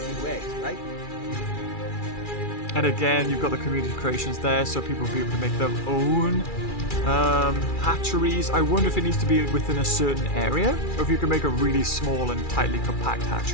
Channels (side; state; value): right; late; 2.3 ms